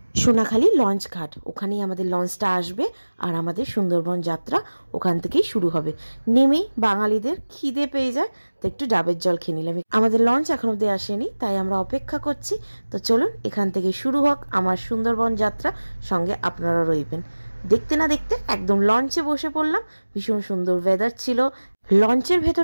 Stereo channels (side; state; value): both; inverted; correlation -1.00